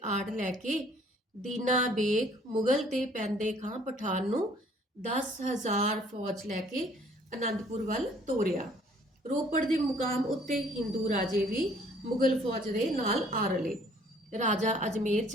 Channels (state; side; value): normal; both; correlation 0.58